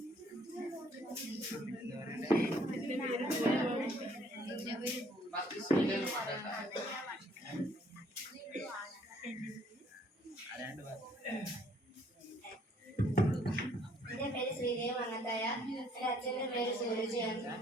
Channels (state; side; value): normal; both; correlation 0.63